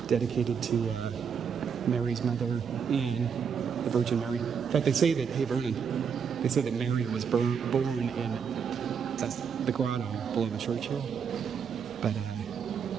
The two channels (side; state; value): left; quieter; 6.8 dB